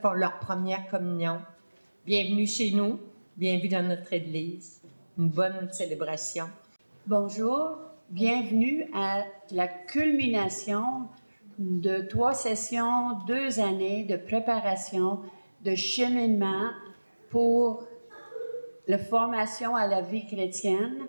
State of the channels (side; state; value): both; inverted; correlation -1.00